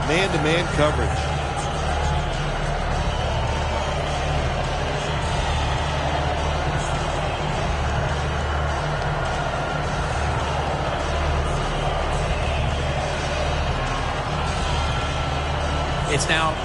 man-to-man coverage. It's now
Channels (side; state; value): both; identical; correlation 1.00